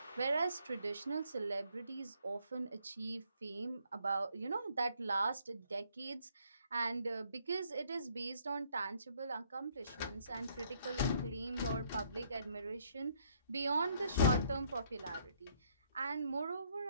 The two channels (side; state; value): both; inverted; correlation -0.67